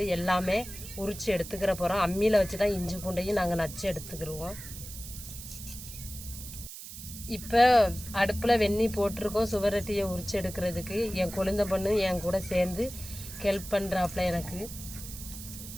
எல்லாமே உரிச்சு எடுத்துக்கிற போகிறோம். அம்மியில் வச்சு தான் இஞ்சி பூண்டையும் நாங்கள் நச்சு எடுத்துக்கிடுவோம். இப்போ அடுப்பில் வெந்நீர் போட்டிருக்கோம் சுவரொட்டியை உரிச்சு எடுக்கிறதுக்கு. என் குழந்தை பொண்ணு என் கூட சேர்ந்து ஹெல்ப் பண்ணுறாப்புல. எனக்கு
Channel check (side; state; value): right; noise; hiss, 12 dB below the sound